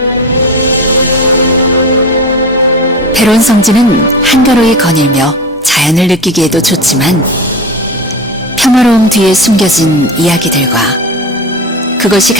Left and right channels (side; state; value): both; normal; correlation 0.26